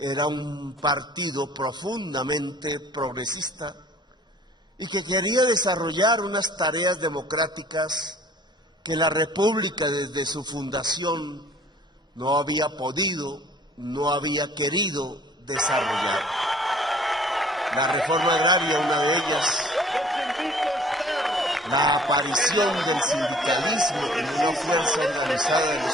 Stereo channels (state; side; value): normal; both; correlation 0.53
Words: un partido profundamente progresista y que quería desarrollar unas tareas democráticas que la República desde su fundación no había podido, no había querido desarrollar. La reforma agraria, una de ellas, la aparición del sindicalismo como una fuerza organizada de los